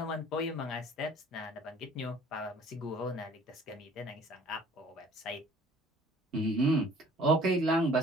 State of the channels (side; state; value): both; normal; correlation 0.52